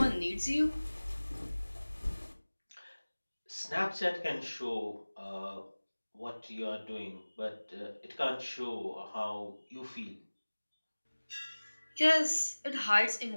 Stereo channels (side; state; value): both; inverted; correlation -1.00